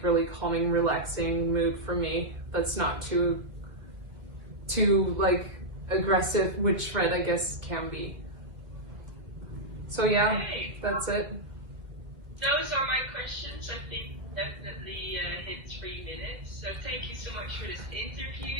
really calming, relaxing mood for me. That's not too aggressive, which red I guess can be. So yeah, that's it. those are my questions. I think definitely hit 3 minutes. So thank you so much for this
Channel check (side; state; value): left; late; 1.9 ms